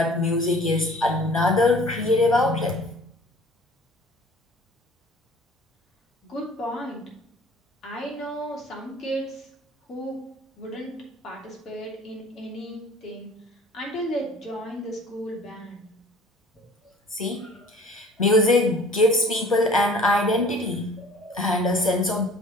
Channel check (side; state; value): both; normal; correlation 0.49